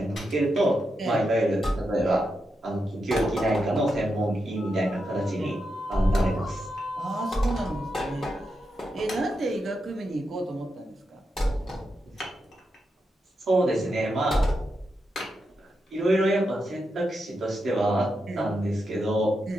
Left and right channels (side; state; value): both; normal; correlation 0.86